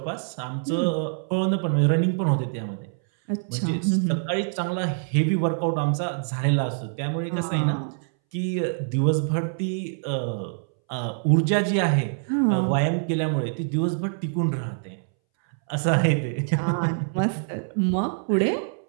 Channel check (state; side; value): silent; left; 62 dB below the other